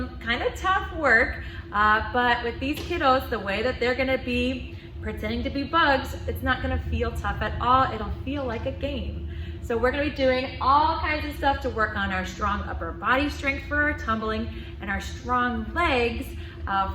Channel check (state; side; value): identical; both; correlation 1.00